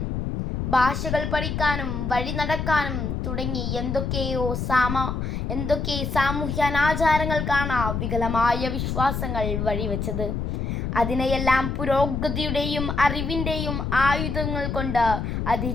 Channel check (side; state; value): left; noise; rumble, 2 dB below the sound